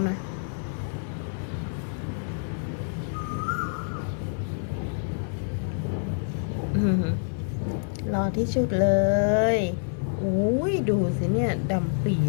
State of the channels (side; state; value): right; silent; 60 dB below the other